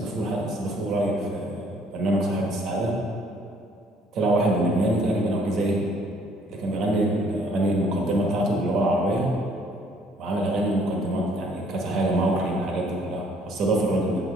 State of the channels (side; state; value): both; normal; correlation 0.62